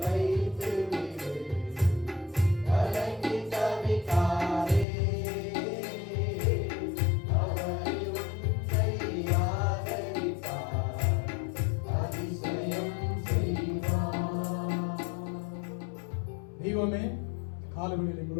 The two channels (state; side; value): drops out; right; at 4.9 s